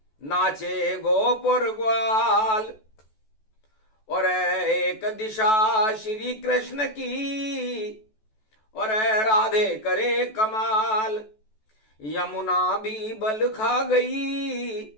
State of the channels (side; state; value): right; late; 14 ms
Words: नाचे गोपुर ग्वाल। और एक दिशा श्री कृष्ण की, और राधे करे कमाल। यमुना भी बल खा गई,